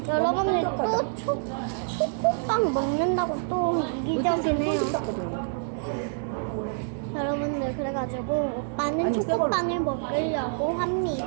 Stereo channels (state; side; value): silent; left; digital silence